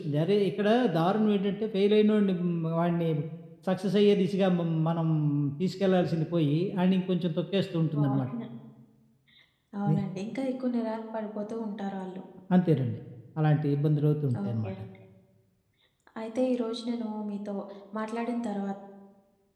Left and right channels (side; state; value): both; identical; correlation 1.00